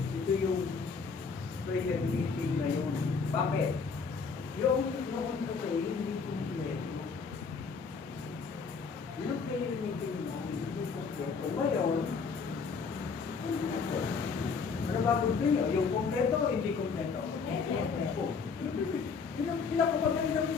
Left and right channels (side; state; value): right; quieter; 5.2 dB